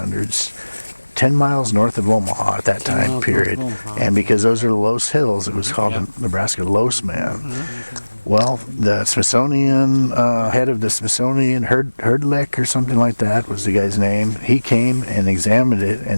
10 miles north of Omaha at that 10 time miles period. north of Omaha. And because those are Los Hills, it was called the Nebraska Los Man. Well, the Smithsonian, head of the Smithsonian, Herdlick or something like that was the guy's name. He came and examined it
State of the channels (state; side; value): inverted; both; correlation -1.00